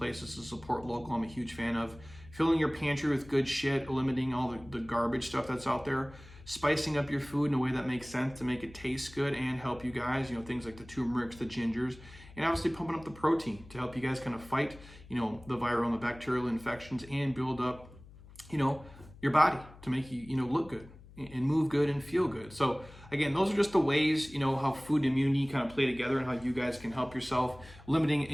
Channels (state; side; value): noise; left; hum, 20 dB below the sound